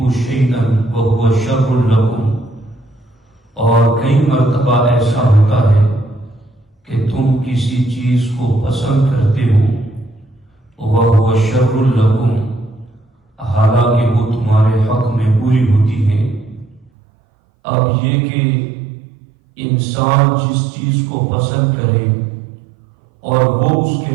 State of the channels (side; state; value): left; drops out; at 16.9 s